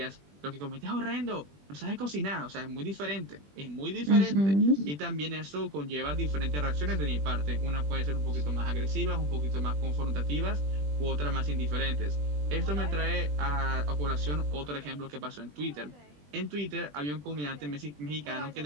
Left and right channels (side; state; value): left; late; 20 ms